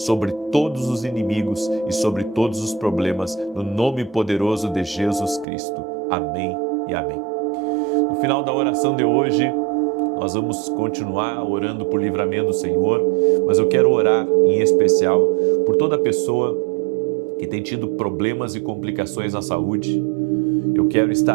todos os inimigos e sobre todos os problemas, no nome poderoso de Jesus Cristo. Amém e amém. No final da oração de hoje, nós vamos continuar orando por livramento do Senhor, mas eu quero orar em especial por toda pessoa que tem tido problemas e complicações na saúde. Eu quero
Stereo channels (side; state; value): left; drops out; at 5.5 s